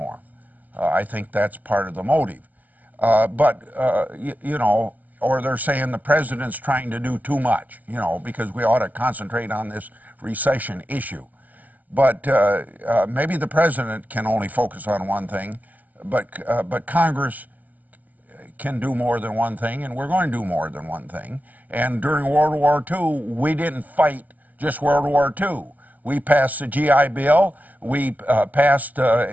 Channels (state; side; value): late; left; 0.081 ms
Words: I think that's part of the motive. You know, or they're saying the president's trying to do too much, you know, because we ought to concentrate on this recession issue. But maybe the president can only focus on one thing, but Congress can do more than one thing, and we're going to do more than one thing. And during World War II, we didn't fight just World War II. We passed the GI Bill. We passed